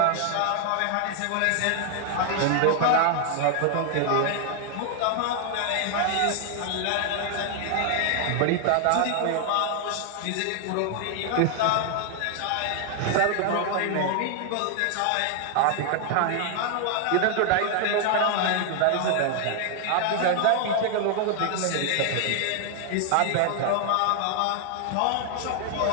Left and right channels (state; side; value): different; both; correlation 0.00